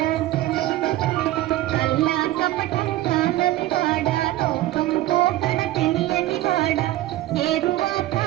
కల్లా కపటం కాదని వాడ లోకంతో తెలియని వాడ ఏరువాక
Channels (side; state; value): left; quieter; 15.5 dB